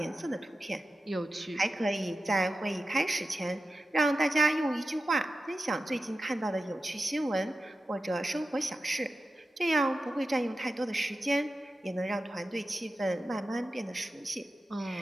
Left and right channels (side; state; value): both; normal; correlation 0.93